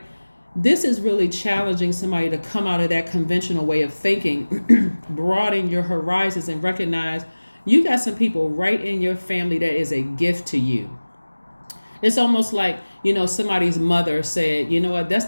This is really challenging somebody to come out of that conventional way of thinking, broaden your horizons, and recognize you got some people right in your family that is a gift to you. It's almost like, somebody's mother said, you know what, that's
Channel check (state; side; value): inverted; both; correlation -1.00